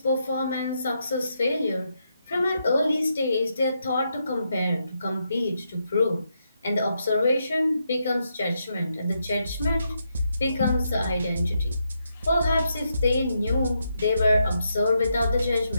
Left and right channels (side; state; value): both; inverted; correlation -0.81